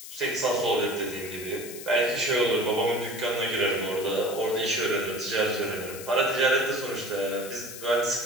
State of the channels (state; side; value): noise; left; hiss, 12 dB below the sound